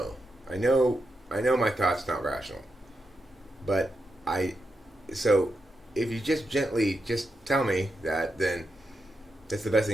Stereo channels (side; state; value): both; normal; correlation 0.86